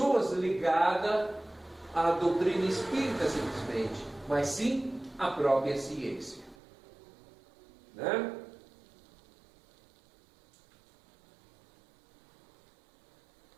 ligadas à doutrina espírita simplesmente, mas sim a própria ciência, né?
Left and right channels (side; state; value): left; drops out; at 6.6 s